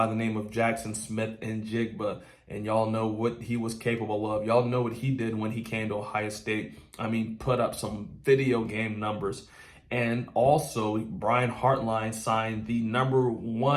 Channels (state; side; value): identical; both; correlation 1.00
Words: the name of Jackson Smith-Njigba. And y'all know what he was capable of. Y'all know what he did when he came to Ohio State. I mean, put up some video game numbers. And also, Brian Hartline signed the